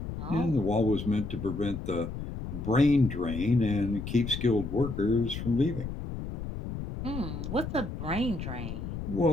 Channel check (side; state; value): left; noise; rumble, 7 dB below the sound